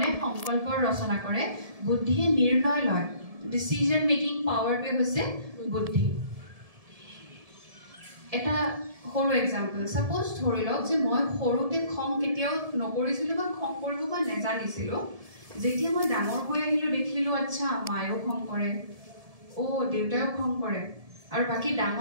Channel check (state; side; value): late; left; 1.7 ms